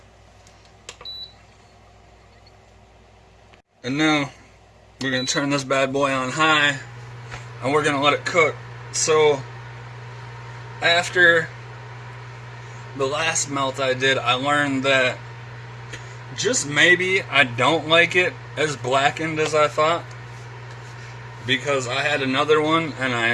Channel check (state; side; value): identical; both; correlation 1.00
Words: And now we're going to turn this bad boy on high and we're going to let it cook. So after the last melt I did, I learned that just maybe I don't like it as blackened as I thought, because I had another one and